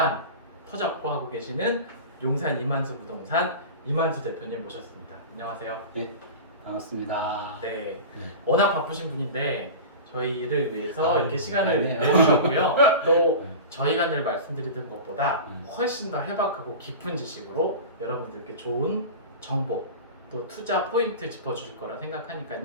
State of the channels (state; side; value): inverted; both; correlation -0.31